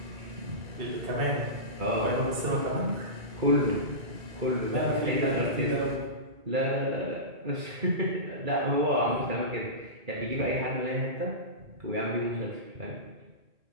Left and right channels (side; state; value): left; late; 2.3 ms